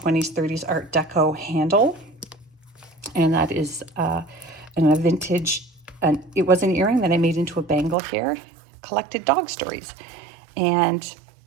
30s Art Deco handle. And that is a vintage, it was an earring that I made into a bangle here. Collected dog stories. And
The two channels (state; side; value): drops out; left; at 8.0 s